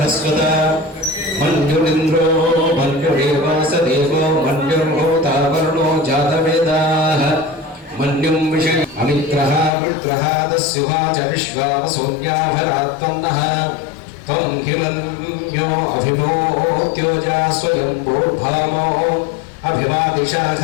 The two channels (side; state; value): right; drops out; at 9.7 s